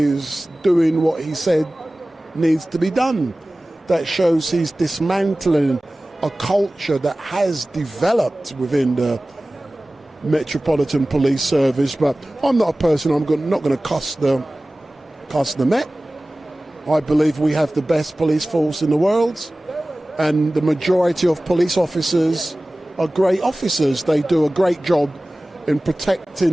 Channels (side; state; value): both; normal; correlation 0.98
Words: doing what he said needs to be done. That shows he's dismantling a culture that has developed within the Metropolitan Police Service. But I'm not a person, not going to cuss the Met. I believe we have the best police force in the world, and the majority of police officers are great officers. They do a great job in